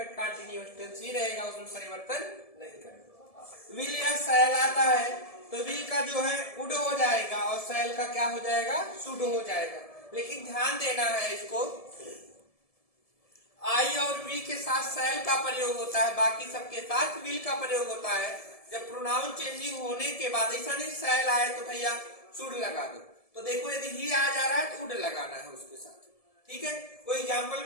कंटीन्यूअस टेंस ही रहेगा, उसमें परिवर्तन नहीं करना। विल या शैल आता है तो विल का जो है वुड हो जाएगा और शैल का क्या हो जाएगा? शुड हो जाएगा। लेकिन ध्यान देना है इसको, आई और वी के साथ शैल का प्रयोग होता है, बाकी सबके साथ विल का प्रयोग होता है। जब प्रोनाउन चेंजिंग होने के बाद ऐसा नहीं शैल आए तो भैया शुड लगा दो। तो देखो यदि ही आ जा रहा है तो वुड लगाना है उसके साथ। ठीक है, कोई एग्जाम्पल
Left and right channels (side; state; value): right; late; 1.7 ms